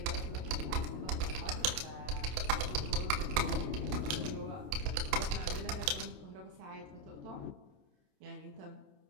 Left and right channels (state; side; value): late; left; 27 ms